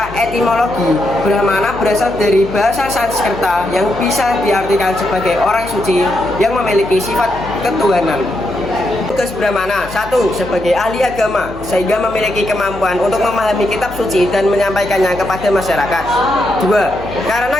etimologi, Brahmana berasal dari bahasa Sanskerta yang bisa diartikan sebagai orang suci yang memiliki sifat ketuhanan. Tugas Brahmana: 1. Sebagai ahli agama, sehingga memiliki kemampuan untuk memahami kitab suci dan menyampaikannya kepada masyarakat. 2. Karena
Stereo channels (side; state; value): left; noise; hum, 16 dB below the sound